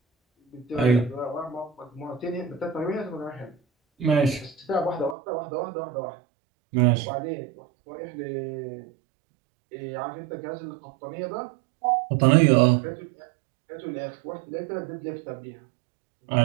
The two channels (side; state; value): left; drops out; at 5.2 s